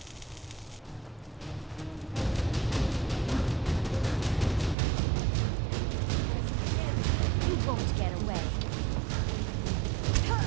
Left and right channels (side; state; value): left; drops out; at 4.8 s